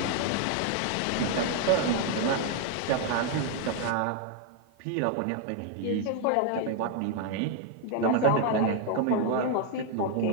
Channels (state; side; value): different; both; correlation 0.01